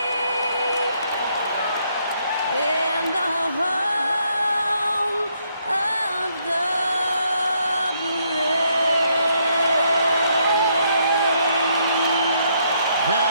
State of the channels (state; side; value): inverted; both; correlation -0.73